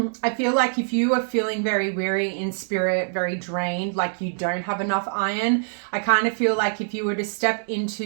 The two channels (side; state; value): left; silent; digital silence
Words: I feel like if you are feeling very weary in spirit, very drained, like you don't have enough iron, I kind of feel like if you were to step